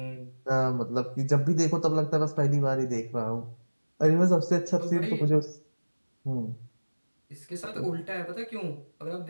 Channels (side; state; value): both; inverted; correlation -1.00